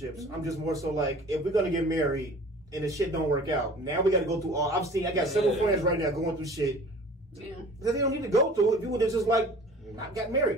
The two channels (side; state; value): both; normal; correlation 0.45